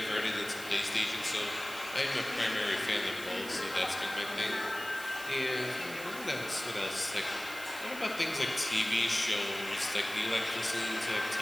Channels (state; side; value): noise; right; hiss, 13 dB below the sound